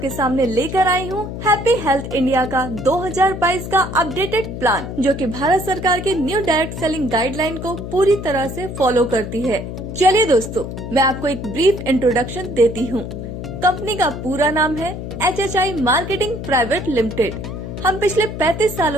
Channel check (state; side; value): noise; left; hum, 7 dB below the sound